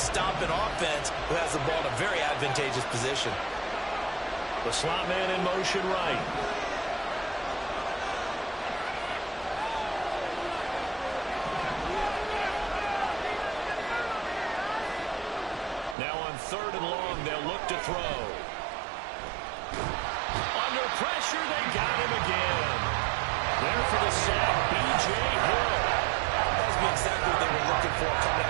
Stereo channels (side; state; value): left; drops out; at 16.0 s